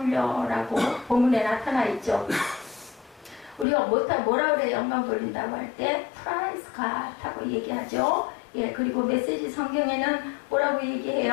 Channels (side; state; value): right; drops out; at 3.7 s